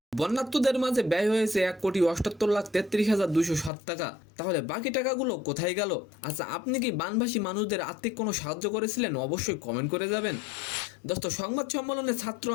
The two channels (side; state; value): right; drops out; at 3.7 s